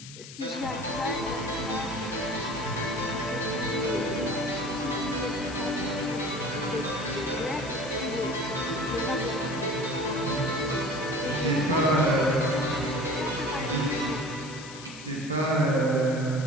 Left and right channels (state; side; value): noise; left; hiss, 15 dB below the sound